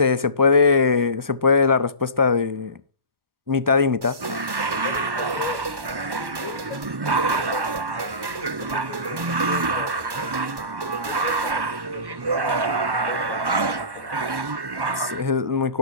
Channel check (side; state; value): left; late; 1.1 ms